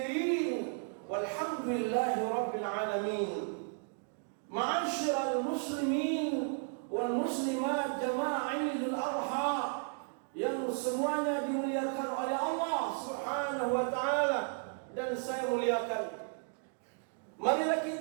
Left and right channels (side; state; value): left; silent; 55 dB below the other